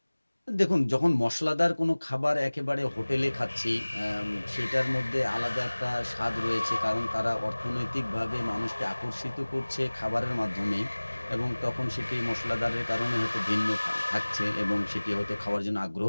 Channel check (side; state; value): both; inverted; correlation -1.00